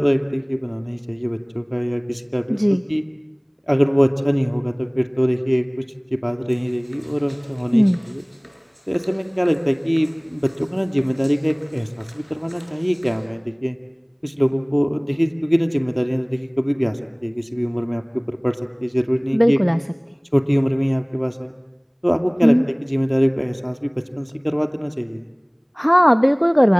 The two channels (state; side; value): identical; both; correlation 1.00